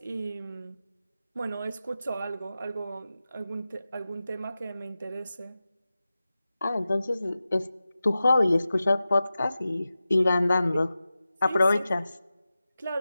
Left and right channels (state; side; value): inverted; both; correlation -0.94